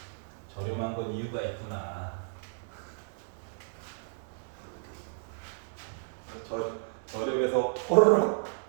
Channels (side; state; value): left; silent; digital silence